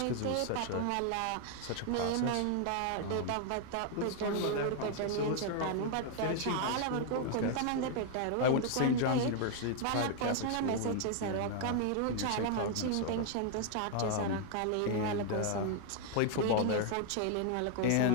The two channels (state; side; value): different; both; correlation 0.00